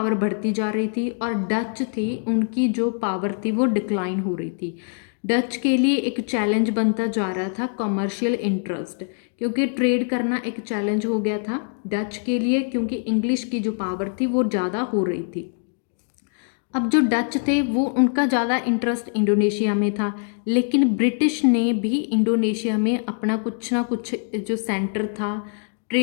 बढ़ती जा रही थी, और डच थी, उनकी जो पावर थी वो डिक्लाइन हो रही थी। डच के लिए एक चैलेंज बनता जा रहा था कमर्शियल इंटरेस्ट, क्योंकि ट्रेड करना एक चैलेंज हो गया था डच के लिए, क्योंकि इंग्लिश की जो पावर थी वो ज़्यादा हो रही थी। अब जो डच थे वो उनका ज़्यादा इंटरेस्ट इंडोनेशिया में था, लेकिन ब्रिटिश ने भी इंडोनेशिया में अपना कुछ ना कुछ जो सेंटर था,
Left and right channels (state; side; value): silent; right; 56 dB below the other